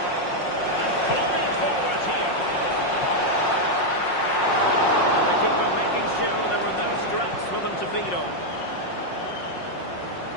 And flying forward here. The keeper making sure there were no scraps for them to feed on.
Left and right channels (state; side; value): late; right; 5.5 ms